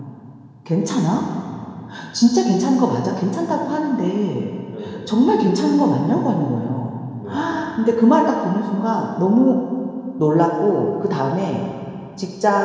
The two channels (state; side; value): identical; both; correlation 1.00